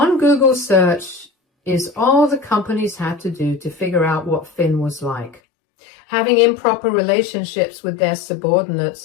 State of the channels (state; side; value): drops out; right; at 5.4 s